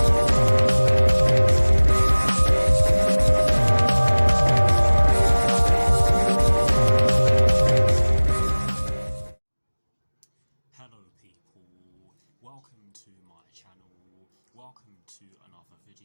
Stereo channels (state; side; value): inverted; both; correlation -1.00